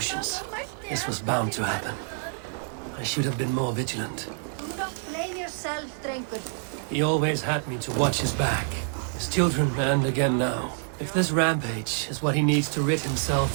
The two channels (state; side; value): silent; left; 60 dB below the other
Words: This was bound to happen. I should have been more vigilant. Do not blame yourself, Drengur. He always had me to watch his back. His children, and again now. If this rampage is what he needs to rid